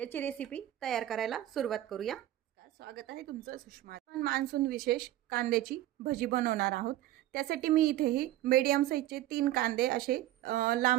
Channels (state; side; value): quieter; left; 14.1 dB